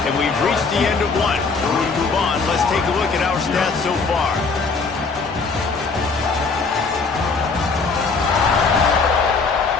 and we've reached the end of one. Before we move on, let's take a look at our stats so far.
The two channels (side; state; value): right; quieter; 4.5 dB